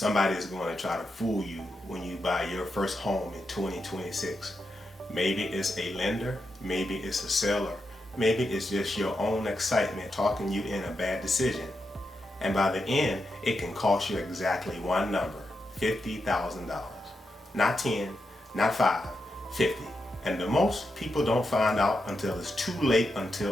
is going to try to fool you when you buy your first home in 2026. Maybe it's a lender, maybe it's a seller, maybe it's just your own excitement talking you in a bad decision. And by the end, it can cost you exactly one number, $50,000. Not 10, not 5, 50. And the most people don't find out until it's too late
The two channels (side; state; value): both; normal; correlation 0.86